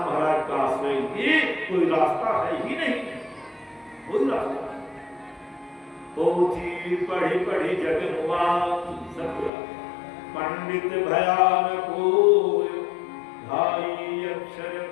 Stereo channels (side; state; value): right; drops out; at 9.5 s